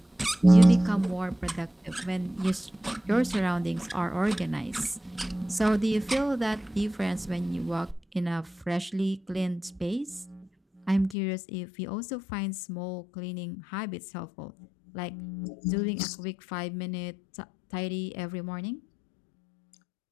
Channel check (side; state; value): right; drops out; at 11.2 s